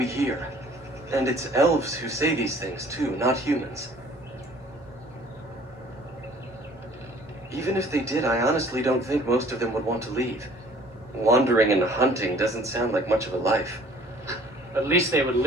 hear. And it's elves who say these things, too, not humans. Even if they did, I honestly don't think most of them would want to leave. Wandering and hunting doesn't sound like much of a life. At least they would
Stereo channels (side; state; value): both; normal; correlation 0.54